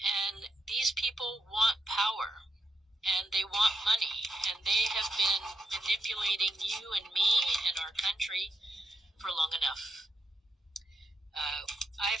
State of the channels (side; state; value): both; normal; correlation 0.83